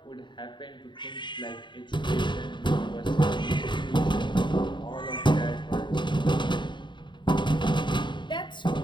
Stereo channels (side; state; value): right; late; 0.23 ms